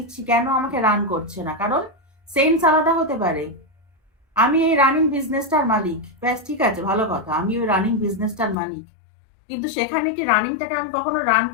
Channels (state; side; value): drops out; right; at 8.6 s